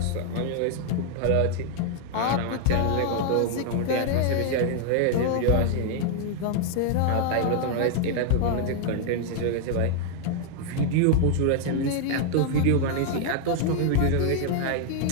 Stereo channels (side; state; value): both; different; correlation 0.00